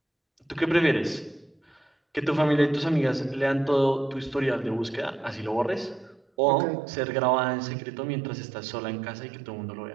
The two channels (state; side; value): drops out; left; at 6.2 s